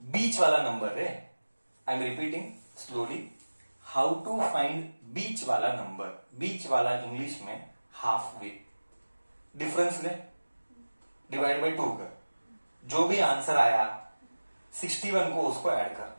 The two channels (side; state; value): both; inverted; correlation -1.00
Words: बीच वाला नंबर है. I am repeating slowly. How to find बीच वाला नंबर. बीच वाला इंग्लिश में हाफ वे. डिफरेंस ले, डिवाइड बाय 2 कर. जो भी आंसर आया 61 को उसको ऐड कर.